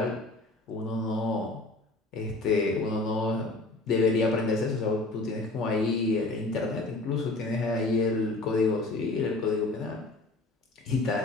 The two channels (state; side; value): quieter; right; 3.0 dB